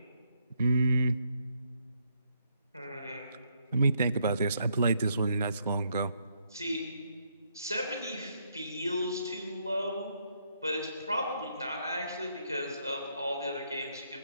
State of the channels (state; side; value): inverted; both; correlation -0.74